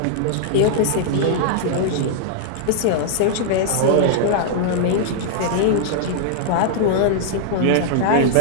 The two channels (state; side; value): different; both; correlation -0.01